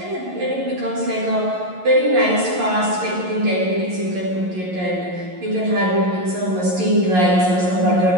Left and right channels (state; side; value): late; left; 11 ms